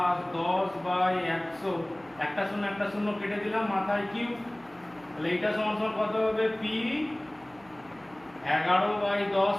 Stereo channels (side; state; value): right; noise; hum, 28 dB below the sound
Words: 10/100, একটা শূন্য কেটে দিলাম, মাথায় কিউব। তাহলে এটা সমান সমান কত হবে? পি 11/10